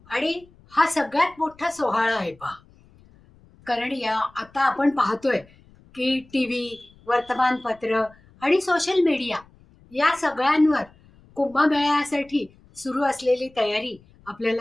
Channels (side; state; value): left; noise; rumble, 28 dB below the sound